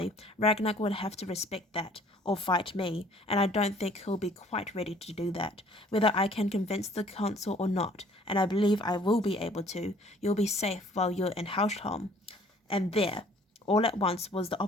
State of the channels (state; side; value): normal; both; correlation 0.56